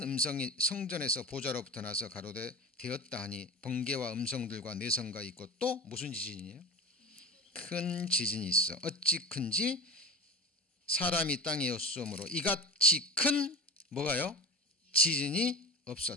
음성이 성전에서 보좌로부터 나서 가로되 되었다 하니 번개와 음성들과 내성과 있고 또 무슨 지진이에요? 큰 지진이 있어. 어찌 큰지 사람이 땅에 없으므로 이같이 큰 뭐가요? 지진이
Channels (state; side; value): normal; both; correlation 0.30